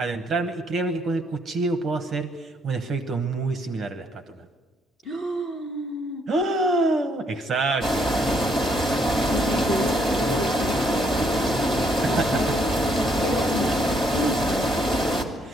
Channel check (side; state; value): both; normal; correlation 0.70